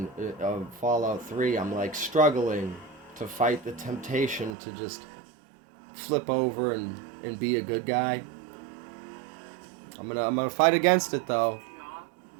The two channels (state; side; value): drops out; left; at 4.5 s